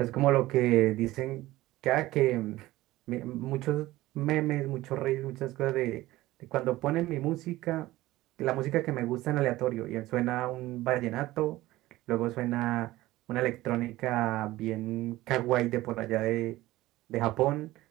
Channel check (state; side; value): quieter; left; 17.3 dB